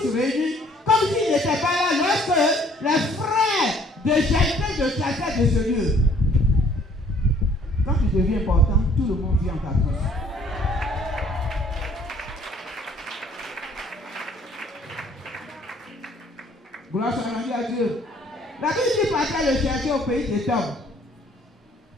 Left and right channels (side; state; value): both; normal; correlation 0.59